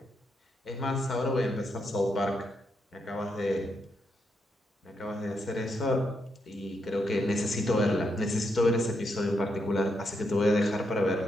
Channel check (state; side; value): normal; both; correlation 0.81